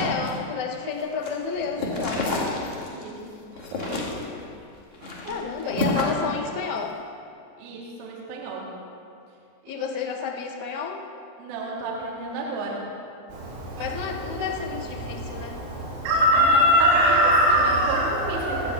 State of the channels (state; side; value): late; left; 33 ms